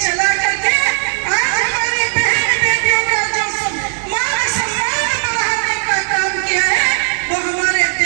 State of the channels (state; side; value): silent; left; 69 dB below the other